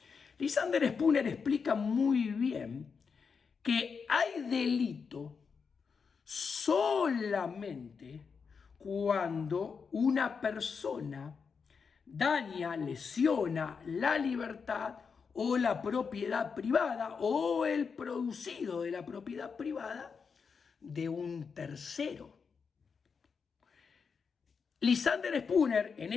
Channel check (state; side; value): quieter; right; 5.7 dB